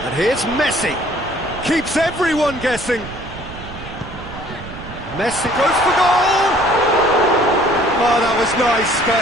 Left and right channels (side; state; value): right; noise; rumble, 13 dB below the sound